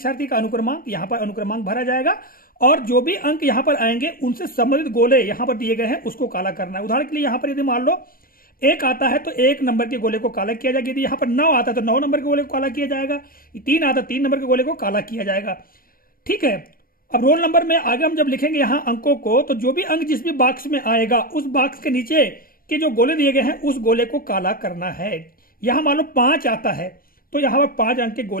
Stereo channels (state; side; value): late; right; 0.42 ms